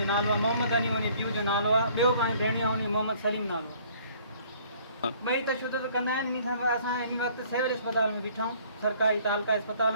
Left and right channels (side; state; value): both; inverted; correlation -0.57